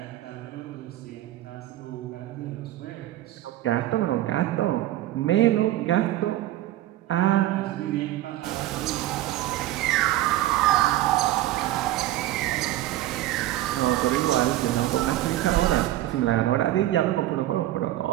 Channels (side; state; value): left; quieter; 14.6 dB